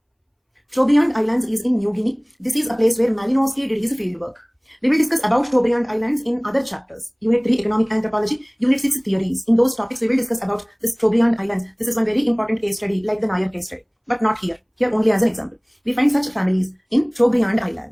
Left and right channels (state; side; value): identical; both; correlation 1.00